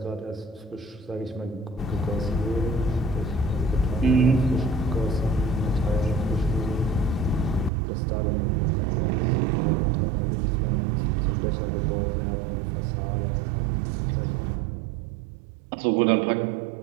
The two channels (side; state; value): left; drops out; at 7.7 s